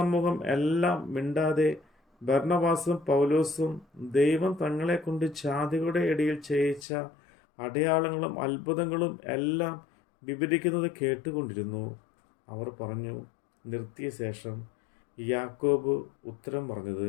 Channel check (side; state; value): right; drops out; at 6.9 s